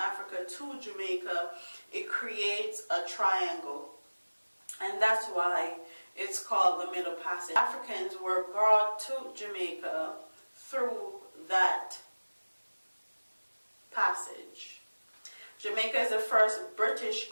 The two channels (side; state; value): both; inverted; correlation -1.00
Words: to Jamaica, it creates a triangle. And that's why it's called the Middle Passage. Africans were brought to Jamaica through that passage. Jamaica is the first British